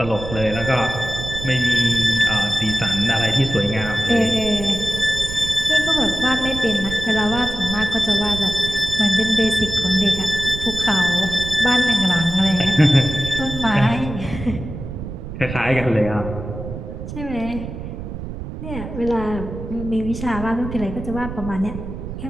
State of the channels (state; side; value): noise; right; rumble, 8 dB below the sound